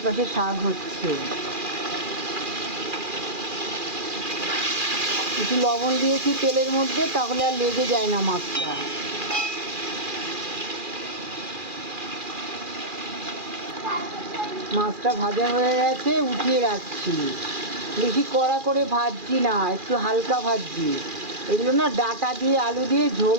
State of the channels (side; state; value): left; late; 2.4 ms